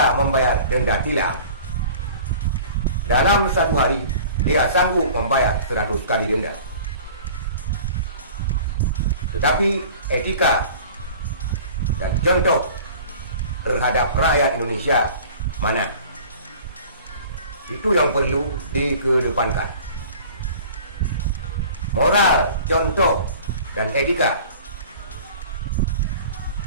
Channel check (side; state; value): both; inverted; correlation -0.44